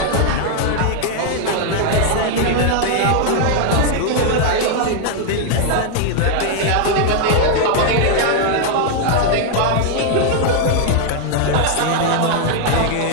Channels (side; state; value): both; different; correlation 0.00